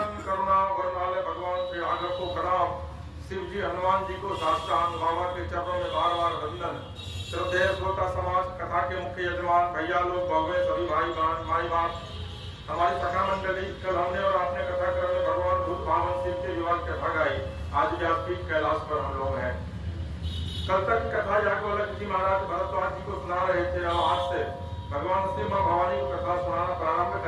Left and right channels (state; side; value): identical; both; correlation 1.00